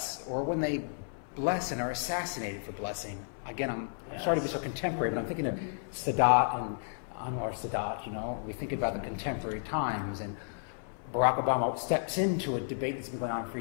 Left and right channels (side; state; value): right; silent; 56 dB below the other